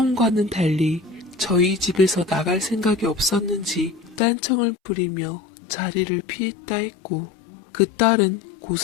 달리 저희 집에서 나갈 생각이 없었는지 딴청을 부리며 자리를 피했다 했고 그 딸은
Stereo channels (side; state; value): right; drops out; at 4.2 s